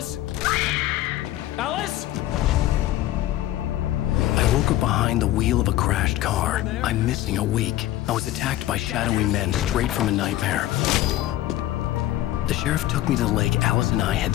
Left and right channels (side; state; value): right; quieter; 14.6 dB